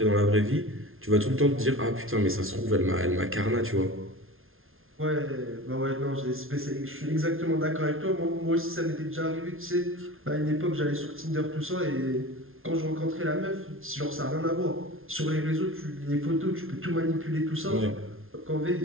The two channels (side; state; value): left; late; 0.61 ms